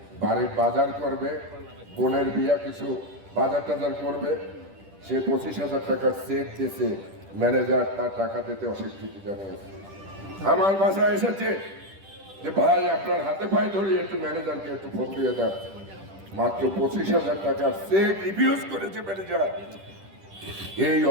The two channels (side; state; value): left; late; 10 ms